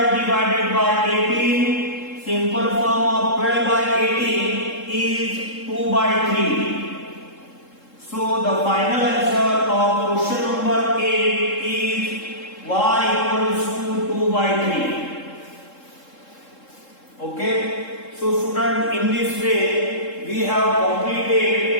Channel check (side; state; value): right; late; 3.7 ms